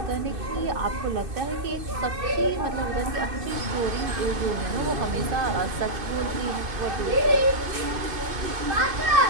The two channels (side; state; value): left; late; 2.5 ms